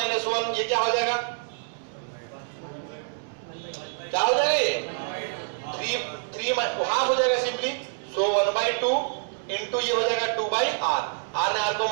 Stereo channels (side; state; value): left; silent; 60 dB below the other